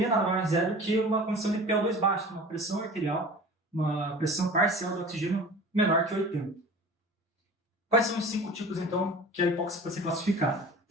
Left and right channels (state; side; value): normal; both; correlation 0.40